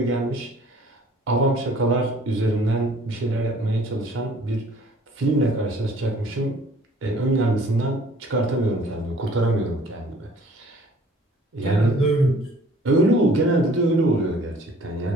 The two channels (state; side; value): normal; both; correlation 0.54